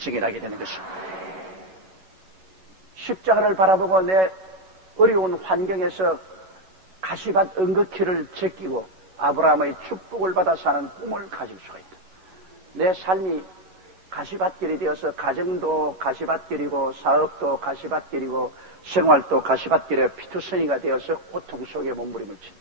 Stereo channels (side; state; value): left; late; 11 ms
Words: 되는 것입니다. 십자가를 바라보고 내 어려운 환경에서 가시밭 은극히를 제끼고 아브라함의 축복을 받아 사는 꿈을 가질 수가 있다. 내 삶이 가시밭길이 되어서 가정도 가시밭길이고 사업도 가시밭길이고 생활도 가시밭길에 피투성이가 되어서 고통 속에 몸부림을 친